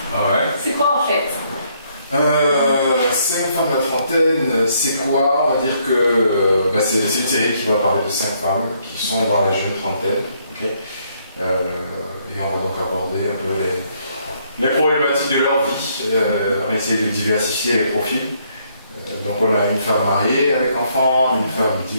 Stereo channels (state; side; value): inverted; both; correlation -0.70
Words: Ah ouais. C'est quoi en fait? 5 femmes à la trentaine, c'est quoi? On va dire que c'est une série qui va parler de 5 femmes qui sont dans la jeune trentaine. Okay. Et on va donc aborder un peu les problématiques de leur vie. On va essayer de diversifier les profils. Donc on a une femme mariée avec enfant, une femme